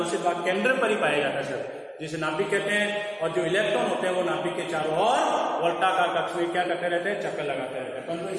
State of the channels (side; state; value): both; identical; correlation 1.00